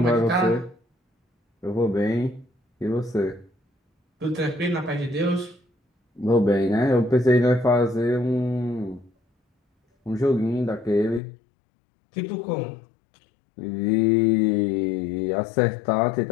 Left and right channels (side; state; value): right; drops out; at 11.2 s